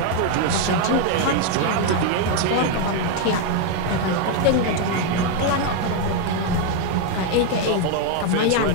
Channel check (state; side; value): different; both; correlation 0.01